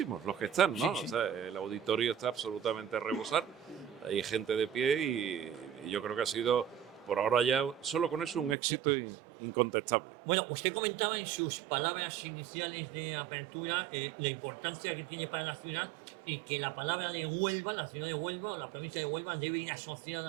los que están, ¿no? O sea, el auditorio está absolutamente a rebosar, hay gente de pie y yo creo que ha sido, por ahora ya, solo con eso, un éxito incontestable. Bueno, usted comentaba en sus palabras iniciales de apertura la importancia que tiene para la ciudad y que la palabra de Huelva, la ciudad de Huelva o la provincia de Huelva debe ir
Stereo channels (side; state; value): left; drops out; at 8.6 s